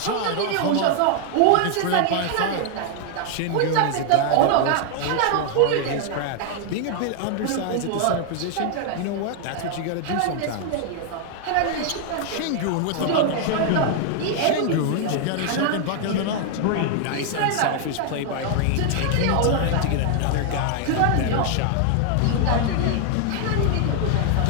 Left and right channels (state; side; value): different; both; correlation 0.00